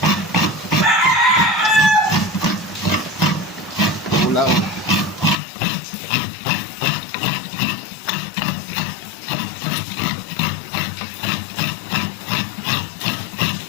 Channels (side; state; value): right; drops out; at 5.4 s